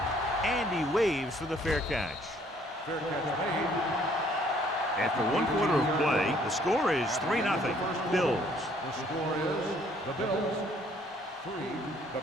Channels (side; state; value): both; normal; correlation 0.62